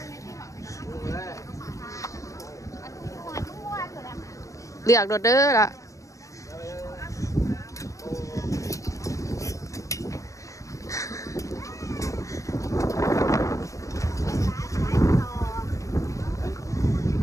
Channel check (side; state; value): right; late; 0.15 ms